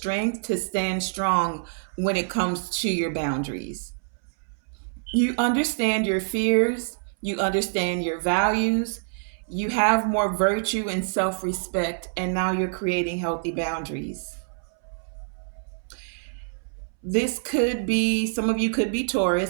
to stand strong when it comes to your boundaries. You understand your fears, you understand your values, you have more virtue and self-respect, and now you're creating healthy boundaries. This could be, some of you could be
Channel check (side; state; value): left; silent; 61 dB below the other